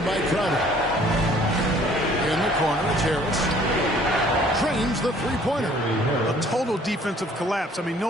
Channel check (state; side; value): normal; both; correlation 0.57